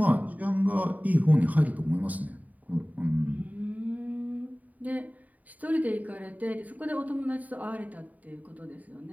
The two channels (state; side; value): late; left; 0.074 ms